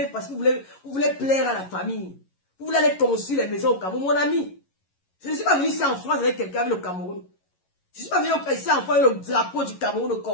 parce que vous voulez plaire à la famille. Vous voulez aller construire les maisons au Cameroun. Mon ami, je ne suis pas venu ici en France avec quelqu'un avec le Cameroun. Je ne suis pas venu ici en France avec le drapeau du Cameroun au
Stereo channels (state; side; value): late; right; 11 ms